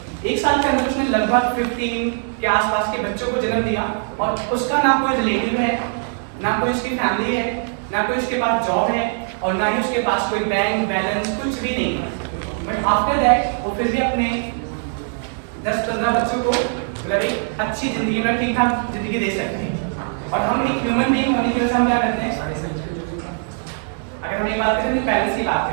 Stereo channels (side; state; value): left; silent; 60 dB below the other